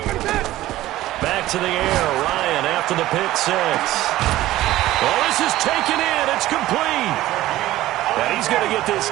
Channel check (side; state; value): left; quieter; 15.5 dB